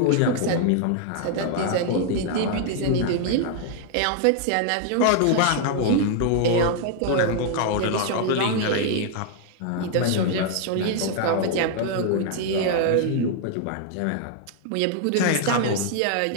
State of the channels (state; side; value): different; both; correlation 0.00